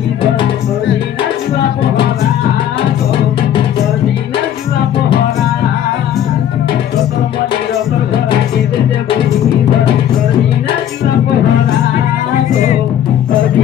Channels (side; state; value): right; quieter; 10.4 dB